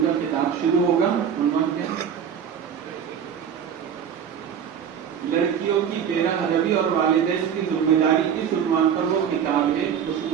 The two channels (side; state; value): left; quieter; 8.0 dB